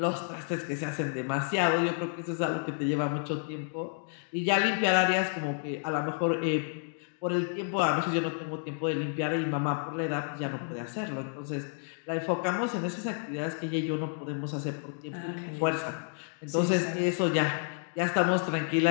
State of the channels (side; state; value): right; silent; 56 dB below the other